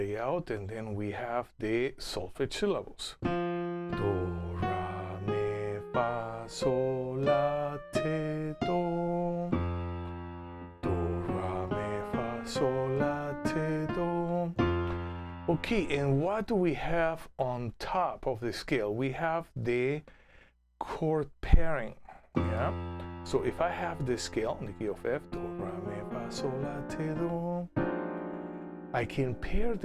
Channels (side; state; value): both; identical; correlation 1.00